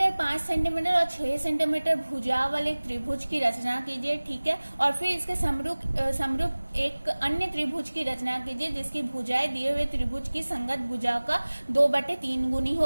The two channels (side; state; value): both; inverted; correlation -1.00